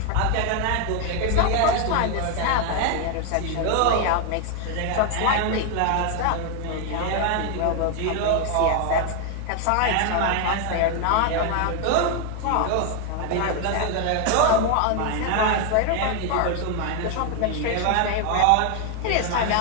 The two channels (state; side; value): different; both; correlation 0.01